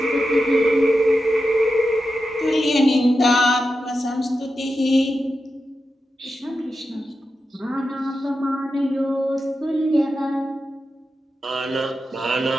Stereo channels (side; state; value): both; normal; correlation 0.90